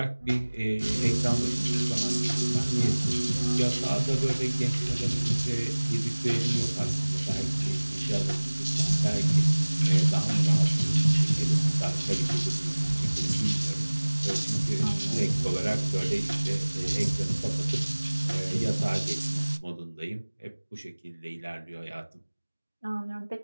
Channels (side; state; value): both; inverted; correlation -1.00